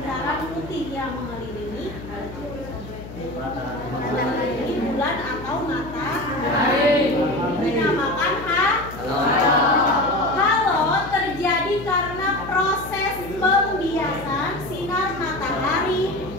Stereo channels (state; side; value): noise; left; hum, 13 dB below the sound